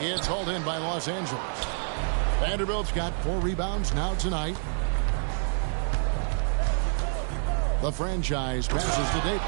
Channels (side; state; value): left; silent; 60 dB below the other